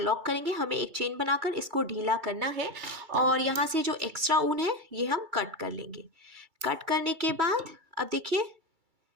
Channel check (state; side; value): late; left; 2.3 ms